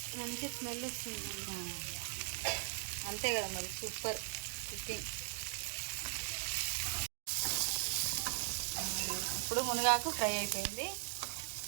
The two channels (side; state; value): left; silent; digital silence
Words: మంచి స్మెల్ వస్తుంది. అంతే కదా మరి, సూపర్ కుకింగ్. ఇప్పుడు మునగాకు ఫ్రై అయిపోయింది.